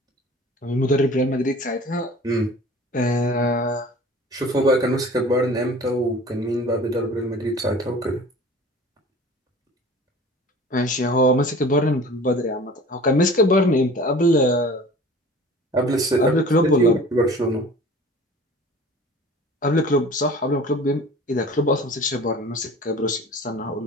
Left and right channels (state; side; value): normal; both; correlation 0.43